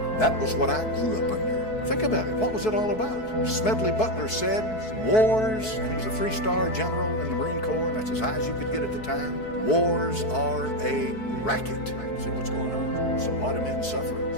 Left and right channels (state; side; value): late; right; 4.6 ms